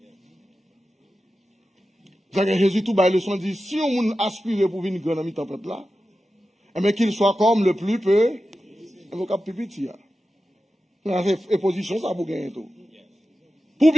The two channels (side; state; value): both; normal; correlation 0.92